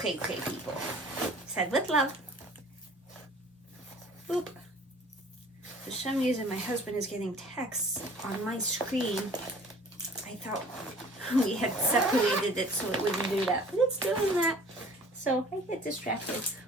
people. Said with love. Oop. For some reason, my husband is getting texts on my screen. I thought we had separated it so it wouldn't do that, but it's doing that. So I get distracted.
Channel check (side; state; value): both; normal; correlation 0.49